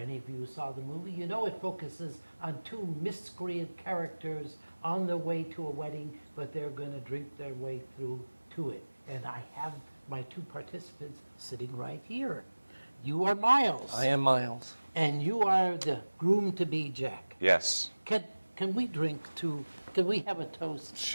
of you who saw the movie, you know it focuses on two miscreant characters on their way to a wedding, but they're going to drink their way through to it. And I have my two participants sitting right here. You are Miles. I am Miles. And you are the groom-to-be, Jack. Yes. Can we drink to, can we have a toast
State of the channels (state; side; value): inverted; both; correlation -1.00